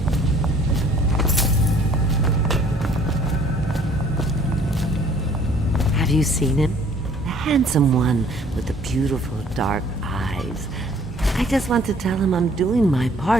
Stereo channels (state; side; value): normal; both; correlation 0.57